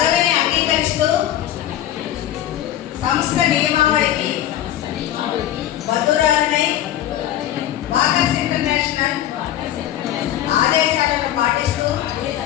అంగీకరిస్తూ సంస్థ నియమావళికి బద్దురాలనే వాకర్స్ ఇంటర్నేషనల్ ఆదేశాలను పాటిస్తూ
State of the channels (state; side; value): quieter; right; 12.3 dB